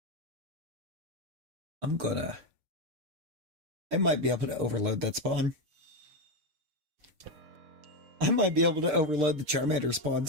I might be able to overload that spawn. I might be able to overload the Charmander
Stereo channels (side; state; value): left; late; 6.7 ms